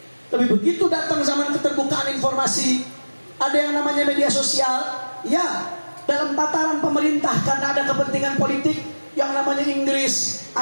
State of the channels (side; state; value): both; inverted; correlation -1.00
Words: Tapi begitu datang zaman keterbukaan informasi, ada yang namanya media sosial, ya, dalam tataran pemerintah karena ada kepentingan politik, yang namanya Inggris,